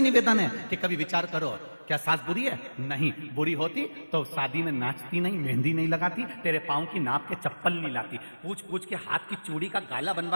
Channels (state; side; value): inverted; both; correlation -1.00